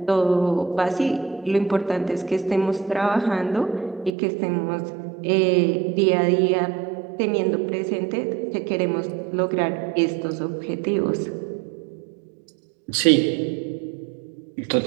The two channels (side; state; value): left; drops out; at 4.1 s